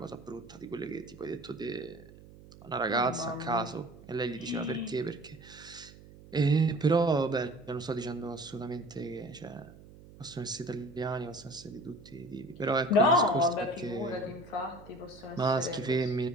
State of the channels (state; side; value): noise; right; hum, 20 dB below the sound